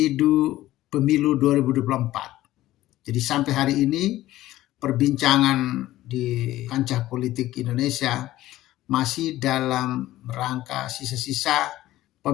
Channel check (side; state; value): right; quieter; 15.4 dB